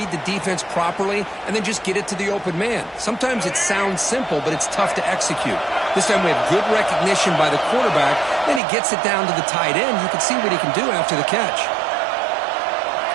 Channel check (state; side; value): drops out; left; at 8.6 s